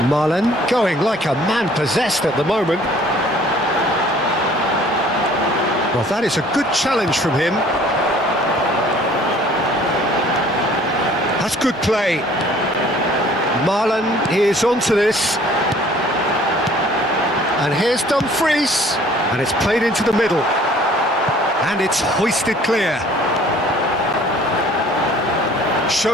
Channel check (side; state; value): both; normal; correlation 0.54